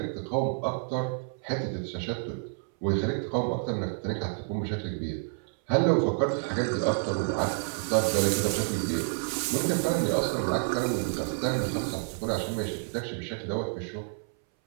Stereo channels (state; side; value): silent; left; 58 dB below the other